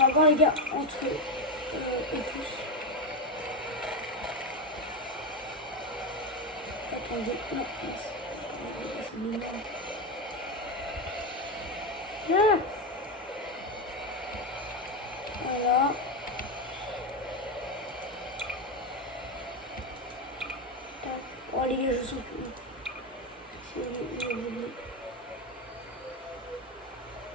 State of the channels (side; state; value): both; normal; correlation 0.12